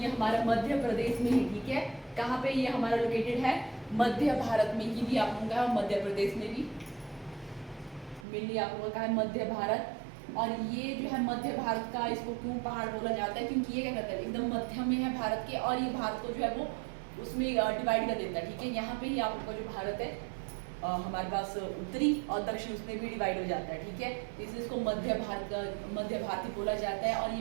हमारा मध्य प्रदेश में ही, ठीक है। कहाँ पे ये हमारा लोकेटेड है, मध्य भारत में ही, भी आप लोगों का मध्य प्रदेश में भी मेनली आप लोगों का है मध्य भारत। और ये जो है मध्य भारत का, इसको क्यों पहाड़ बोला जाता है, क्योंकि ये क्या करता है, एकदम मध्य में है भारत के, और ये भारत को जो है वो उसमें डिवाइड कर देता है, ठीक है। यहाँ पे ही आप लोग का जो भारत है हमारे पास उत्तरी और दक्षिण उसमें भी डिवाइड हो जाता है, ठीक है। इसलिए इसको मध्य भारती बोला जाता है। और ये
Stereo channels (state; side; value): drops out; left; at 8.2 s